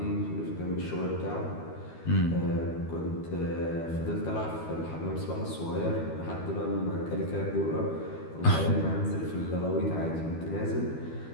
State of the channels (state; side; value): late; right; 12 ms